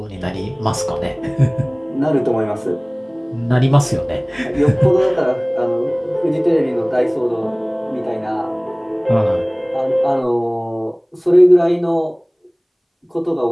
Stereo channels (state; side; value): identical; both; correlation 1.00